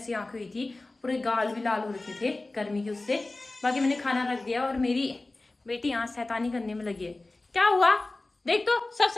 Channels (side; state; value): right; quieter; 3.0 dB